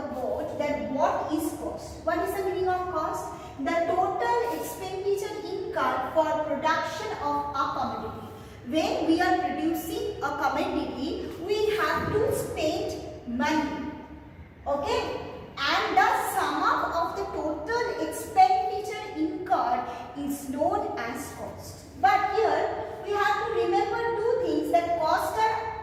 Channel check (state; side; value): identical; both; correlation 1.00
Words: board that what is cost. What is the meaning of cost? The total expenditure incurred for production of a commodity. When we are producing a commodity, we have to spend money. Okay? And the sum up of the total expenditure incurred is known as cost. But here we have to remember two things, that costs